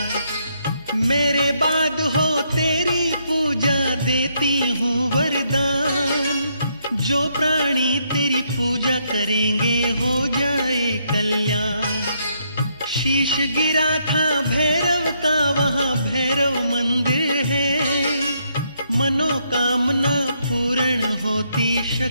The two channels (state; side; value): inverted; both; correlation -0.74